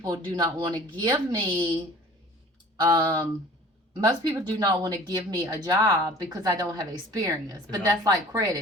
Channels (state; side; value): normal; both; correlation 0.46